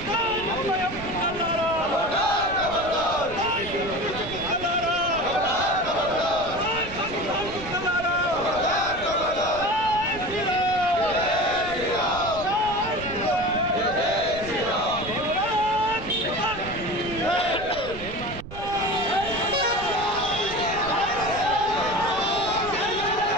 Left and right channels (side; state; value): right; noise; rumble, 13 dB below the sound